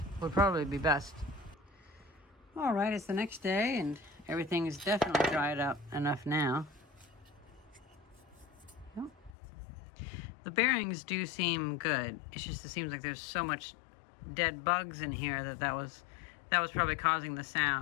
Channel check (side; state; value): right; drops out; at 9.3 s